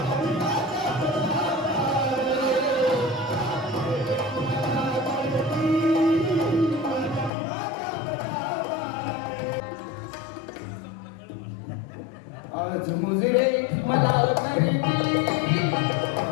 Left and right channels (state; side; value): drops out; right; at 7.3 s